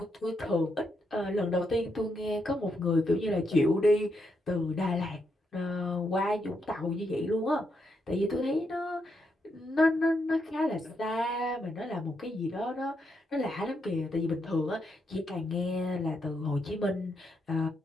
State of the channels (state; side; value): normal; both; correlation 0.80